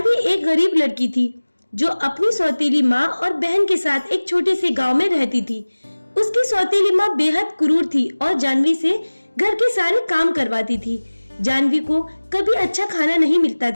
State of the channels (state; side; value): inverted; both; correlation -1.00